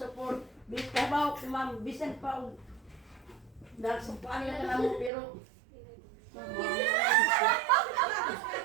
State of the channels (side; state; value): left; drops out; at 5.1 s